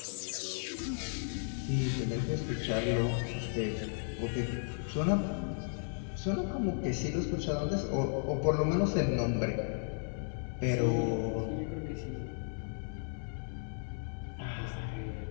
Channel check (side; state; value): right; silent; 55 dB below the other